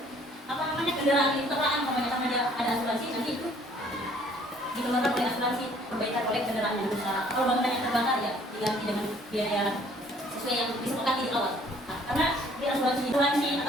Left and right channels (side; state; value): both; normal; correlation 0.58